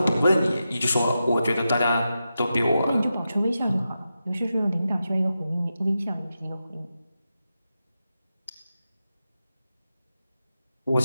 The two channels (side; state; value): both; inverted; correlation -0.90